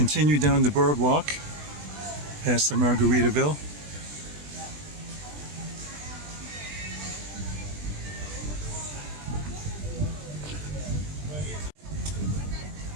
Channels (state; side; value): late; left; 20 ms